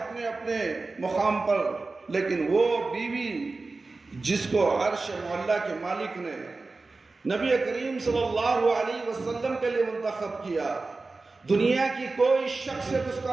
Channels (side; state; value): left; quieter; 3.7 dB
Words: اپنے مقام پر، لیکن وہ بیوی جس کو عرش معلیٰ کے مالک نے نبی کریم صلی اللہ علیہ وسلم کے لیے منتخب کیا، دنیا کی کوئی شخصیت اس کا